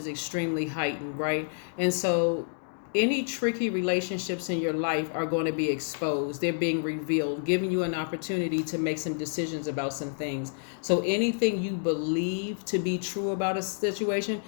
extremely heightened, right? And so any tricky relationships in your life are going to be exposed. They're being revealed, giving you an opportunity to make some decisions about some things. So anything you believe to be true about a situation,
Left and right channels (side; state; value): right; silent; digital silence